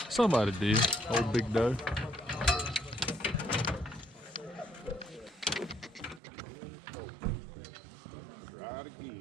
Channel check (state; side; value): drops out; left; at 6.2 s